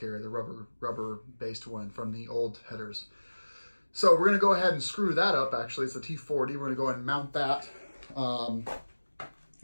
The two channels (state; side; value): inverted; both; correlation -1.00